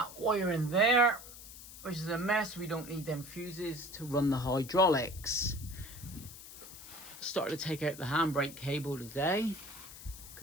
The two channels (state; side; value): noise; left; hiss, 15 dB below the sound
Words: wiring there, which is a mess. We don't need them fuses to run the hydraulics. Started to take out the handbrake cable today,